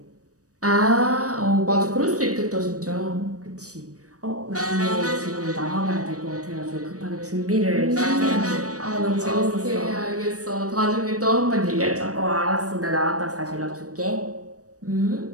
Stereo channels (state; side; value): late; left; 0.66 ms